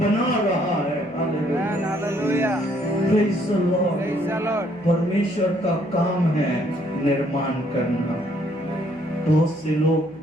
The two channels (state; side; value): noise; right; hum, 28 dB below the sound